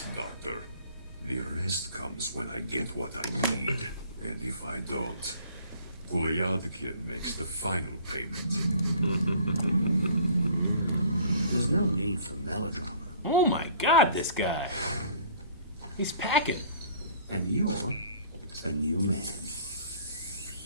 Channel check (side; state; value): both; inverted; correlation -0.52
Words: Doctor. The rest comes when I get what I need. And if I don't, Gulyadkin makes the final payment. There's no need for melodrama. Oh my god, this guy. He's packing. And you're a new man.